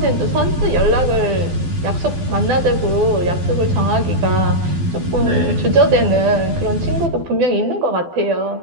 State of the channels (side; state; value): left; late; 12 ms